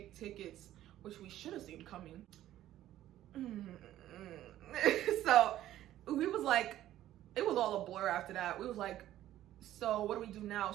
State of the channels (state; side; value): quieter; left; 13.2 dB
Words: tickets, which we should have seen coming. So we was like, it was all a blur after that. We was like, so what do we do now?